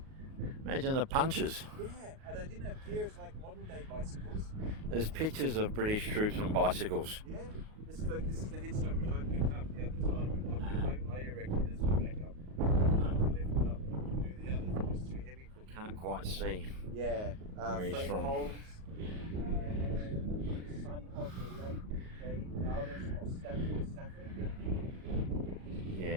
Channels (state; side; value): late; left; 38 ms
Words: imagine the punches. Yeah, and they didn't have gears like modern day bicycles. There's pictures of British troops on bicycles. Yeah, this is the headstone which I picked up the other time. I erected this one back up. I can lift it up, but I couldn't do the others. It was too heavy for me. Can't quite see. Yeah, where he's Frank from. Holmes, son of the late J. Dowless of Stafford.